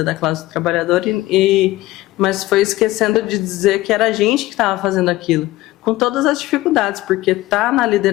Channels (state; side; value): quieter; right; 17.5 dB